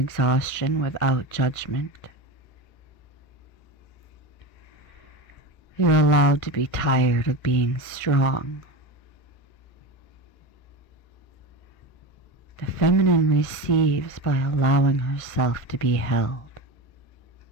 without judgment. You're allowed to be tired of being strong. The feminine receives by allowing herself to be held.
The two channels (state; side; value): late; right; 1.6 ms